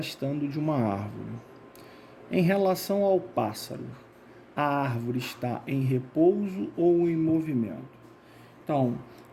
de uma árvore. Em relação ao pássaro, a árvore está em repouso ou em movimento? Então,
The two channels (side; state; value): both; identical; correlation 1.00